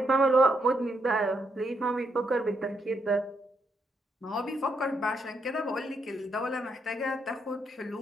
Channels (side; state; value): both; normal; correlation 0.78